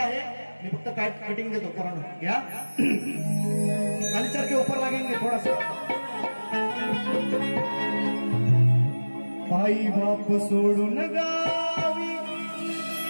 मी फक्त कटिंग देतो पोरांना घ्या खाली चरके ऊपर लागेंगे थोड़ा सा आई बाप सोडून गावी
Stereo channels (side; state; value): both; inverted; correlation -1.00